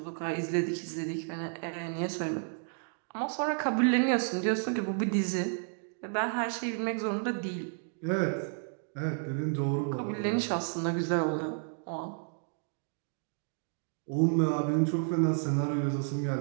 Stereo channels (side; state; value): left; silent; 57 dB below the other